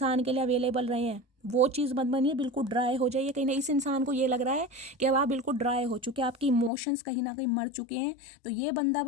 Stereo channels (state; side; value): drops out; right; at 6.7 s